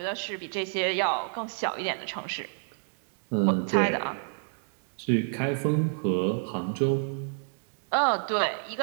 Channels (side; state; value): left; silent; digital silence